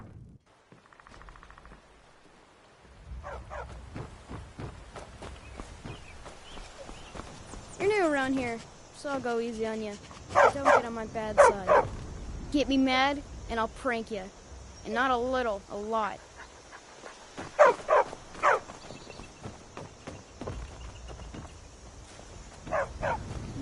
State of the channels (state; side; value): identical; both; correlation 1.00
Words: You're new around here, so I'll go easy on you. Don't get on my bad side. Get me mad, and I'll prank you. And not a little, a lot.